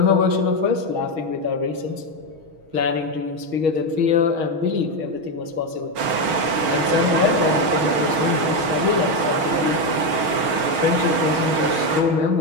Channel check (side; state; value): left; late; 6.3 ms